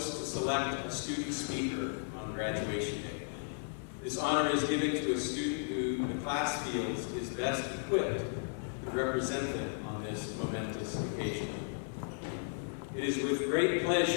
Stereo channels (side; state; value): right; silent; digital silence